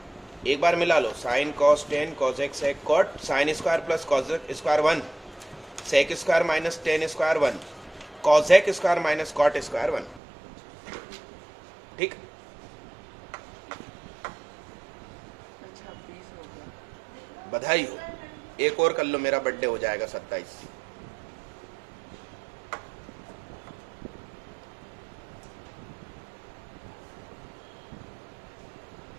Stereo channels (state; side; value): drops out; left; at 10.2 s